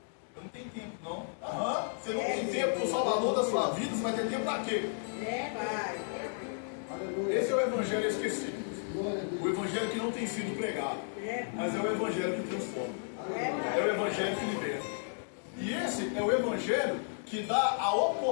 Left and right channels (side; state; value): right; silent; digital silence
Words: Eu não tenho tempo, não. Aham. Você não tem tempo para o Salvador da sua vida, você vai ter tempo para quê? Pai. Esse é o Evangelho esquecido. O Evangelho que não tem sido pregado. Mas é o Evangelho que transforma. É o Evangelho que liberta. E esse é o Evangelho que dá a